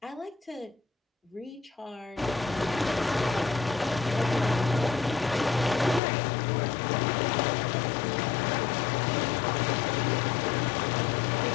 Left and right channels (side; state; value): right; drops out; at 6.0 s